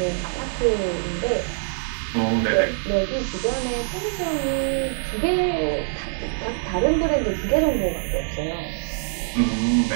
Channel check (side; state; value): left; silent; digital silence